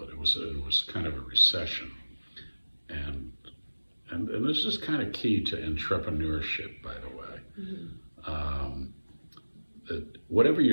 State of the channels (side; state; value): both; inverted; correlation -1.00